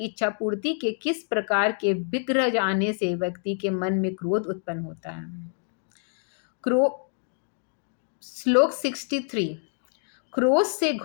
इच्छा पूर्ति के किस प्रकार के विग्रह जाने से व्यक्ति के मन में क्रोध उत्पन्न होता है। श्लोक 63। क्रोध से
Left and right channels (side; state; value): right; silent; 60 dB below the other